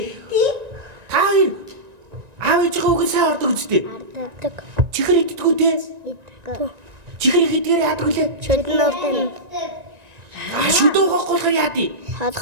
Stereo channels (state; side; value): late; left; 1.9 ms